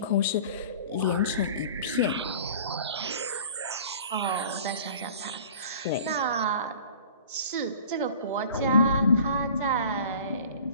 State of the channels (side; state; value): both; inverted; correlation -0.44